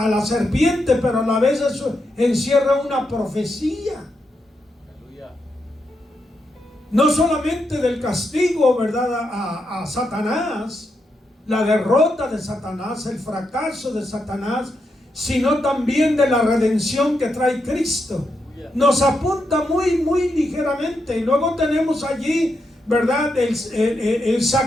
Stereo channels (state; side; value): normal; both; correlation 0.83